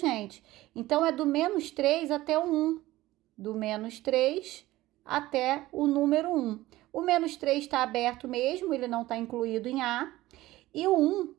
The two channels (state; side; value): quieter; left; 17.1 dB